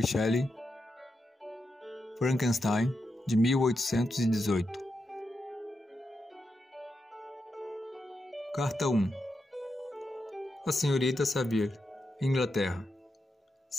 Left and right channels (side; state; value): both; normal; correlation 0.86